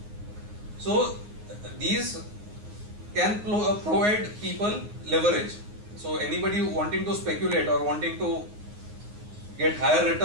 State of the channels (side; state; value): left; late; 9.6 ms